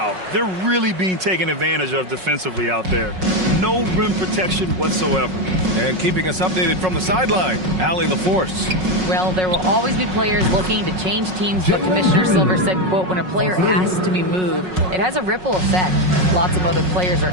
they're really being taken advantage of defensively out there. No rim protection whatsoever. And keeping us updated from the sideline, Allie LaForce. Well, there will always be players looking to change teams, but Commissioner Silver said, quote, when a player asks to be moved, it has a ripple effect. Lots of other players are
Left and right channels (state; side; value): late; left; 5.4 ms